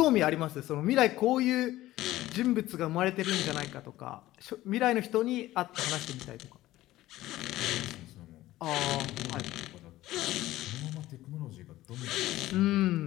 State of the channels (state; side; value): quieter; right; 15.9 dB